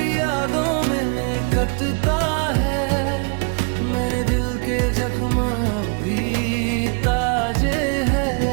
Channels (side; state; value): left; quieter; 36.6 dB